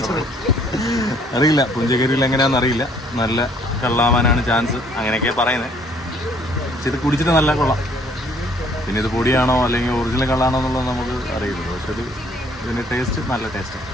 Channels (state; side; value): normal; both; correlation 0.61